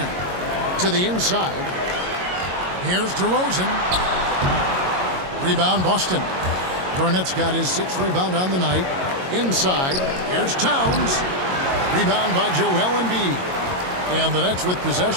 To the inside. Here's DeRozan. Rebound Boston. Garnett's got his 6th rebound on the night. Inside. Here's Towns. Rebound by Joel Embiid. And the Nets with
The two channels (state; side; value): late; left; 22 ms